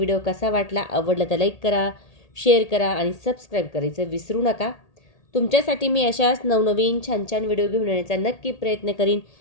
कसा वाटला. आवडला तर लाईक करा, शेअर करा आणि सबस्क्राईब करायचं विसरू नका. तुमच्यासाठी मी अशाच नवनवीन छान छान व्हिडिओ घेऊन येण्याचा नक्की प्रयत्न करीन.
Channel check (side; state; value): right; late; 1.8 ms